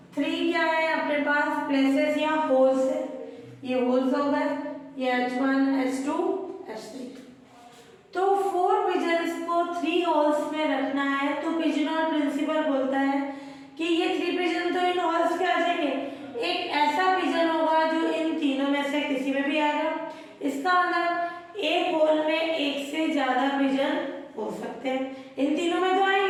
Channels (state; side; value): identical; both; correlation 1.00